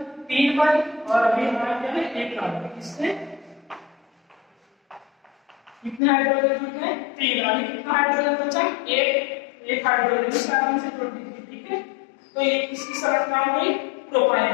3 बन, और अभी हमारा क्या है, 1 कार्बन। इससे कितने हाइड्रोजन बचे, 3। अभी कितना हाइड्रोजन बचा, 1 हाइड्रोजन इस कार्बन से जोड़ दीजिए। ठीक है, तो ये किसकी संरचना हो गई,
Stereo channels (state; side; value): drops out; right; at 6.0 s